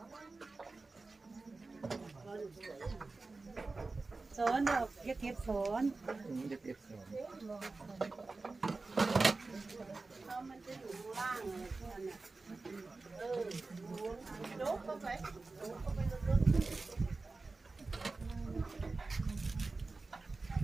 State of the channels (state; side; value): quieter; left; 3.6 dB